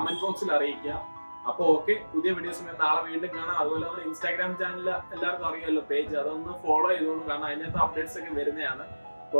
ബോക്സിൽ അറിയിക്കുക. അപ്പോൾ ഓക്കെ, പുതിയ വീഡിയോസ് നാളെ വീണ്ടും കാണാം. അതുപോലെ നമ്മുടെ ഇൻസ്റ്റാഗ്രാം ചാനൽ എല്ലാവർക്കും അറിയാമല്ലോ, പേജ്, അതൊന്ന് ഫോളോ ചെയ്തോളൂ. കാരണം അതിനകത്ത് അപ്ഡേറ്റ്സ് ഒക്കെ വരുന്നതാണ്.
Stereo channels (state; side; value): inverted; both; correlation -1.00